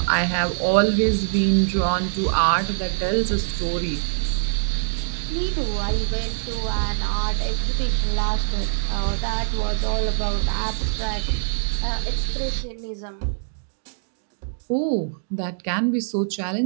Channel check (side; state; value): left; silent; digital silence